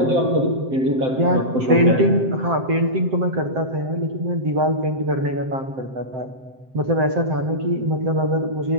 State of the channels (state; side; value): late; left; 7.7 ms